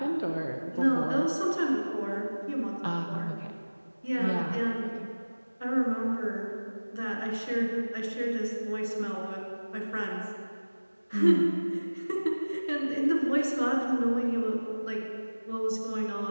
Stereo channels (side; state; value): both; inverted; correlation -1.00